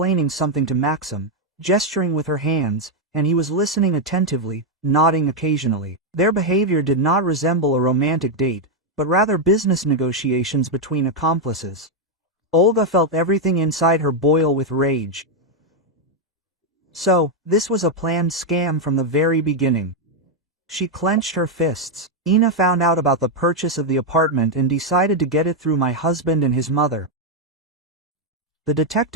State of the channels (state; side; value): normal; both; correlation 0.01